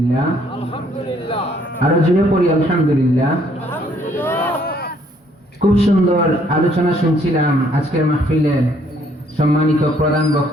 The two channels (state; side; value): normal; both; correlation 0.65